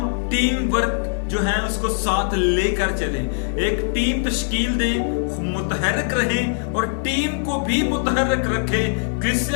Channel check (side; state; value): right; silent; digital silence